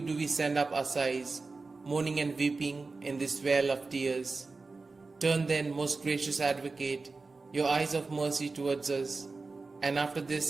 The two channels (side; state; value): left; quieter; 3.9 dB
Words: we send up our sighs, mourning and weeping in this vale of tears. Turn then, most gracious Advocate, your eyes of mercy towards us, and after this